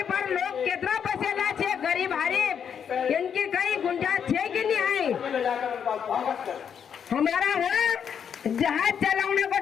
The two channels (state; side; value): quieter; right; 7.7 dB